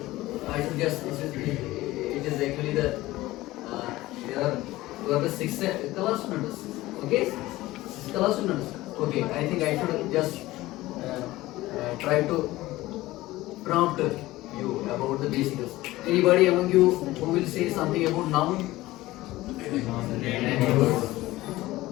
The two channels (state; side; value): quieter; right; 17.7 dB